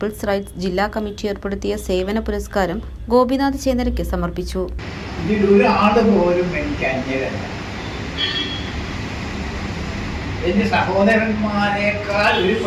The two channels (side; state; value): both; identical; correlation 1.00